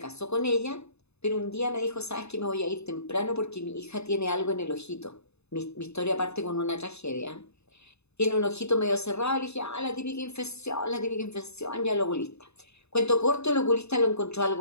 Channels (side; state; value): right; late; 0.80 ms